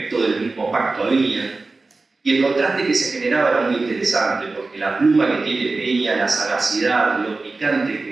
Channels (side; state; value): left; quieter; 3.6 dB